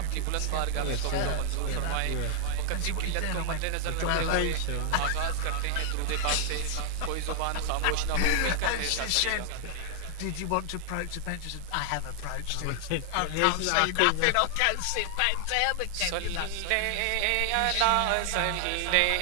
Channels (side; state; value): both; different; correlation 0.00